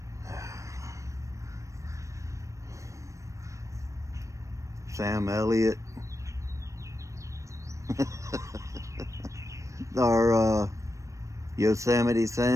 Sam Elliott. Our Yosemite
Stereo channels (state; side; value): late; left; 0.15 ms